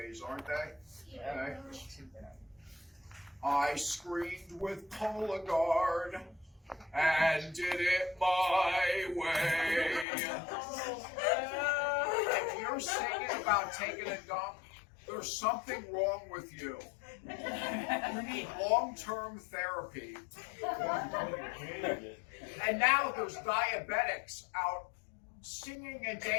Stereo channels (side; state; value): right; drops out; at 10.1 s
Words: aren't they? Okay. I screamed with Cologuard and did it my way. If you're singing about taking a dump, there's something wrong with you. You need long-term therapy. And now there's diabetics out singing and